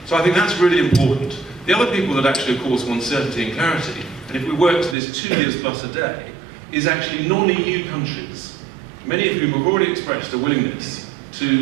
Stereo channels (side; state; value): left; drops out; at 5.0 s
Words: So I think that's really important. The other people that actually, of course, want certainty and clarity, and if we work to this 2 years plus a day, is actually non-EU countries, many of whom have already expressed a willingness